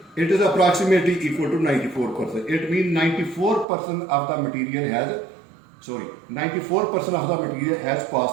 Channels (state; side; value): drops out; left; at 3.7 s